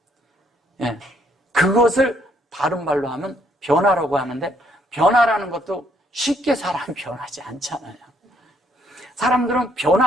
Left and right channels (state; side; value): normal; both; correlation 0.69